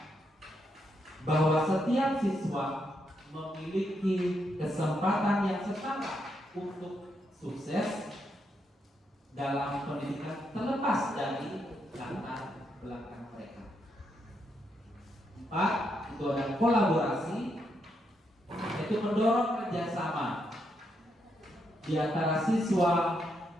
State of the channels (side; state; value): both; normal; correlation 0.79